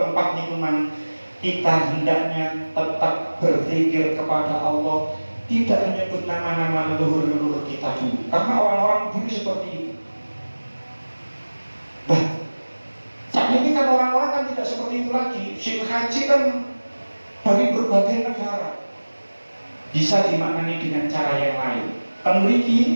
lingkungan, kita hendaknya tetap berzikir kepada Allah, tidak menyebut nama-nama leluhur-leluhur kita dulu. Karena orang-orang dulu seperti itu. Nah, saat ini kan orang-orang kan tidak seperti itu lagi. Musim haji kan dari berbagai negara, bisa dimaknani dengan cara yang lain.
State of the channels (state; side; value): inverted; both; correlation -1.00